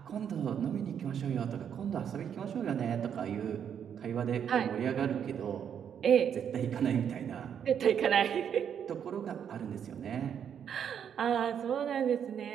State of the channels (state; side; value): quieter; left; 8.3 dB